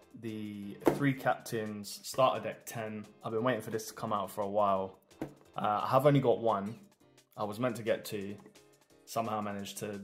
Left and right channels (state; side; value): identical; both; correlation 1.00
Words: the 3 Captains Starter Deck 10. I've been waiting for this to come out for a while. I have only got one. I was meant to get 2. Somehow managed to